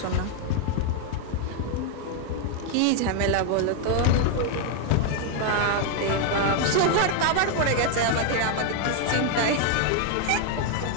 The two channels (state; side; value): different; both; correlation 0.01